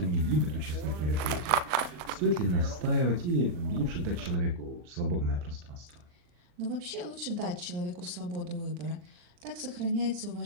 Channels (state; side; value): late; left; 40 ms